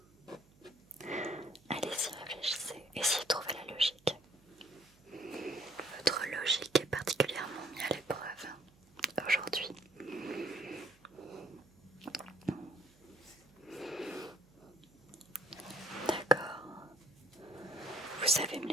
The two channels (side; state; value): right; noise; hum, 28 dB below the sound